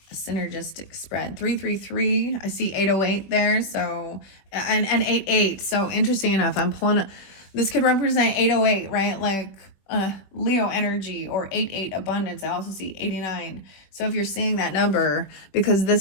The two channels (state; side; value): late; right; 21 ms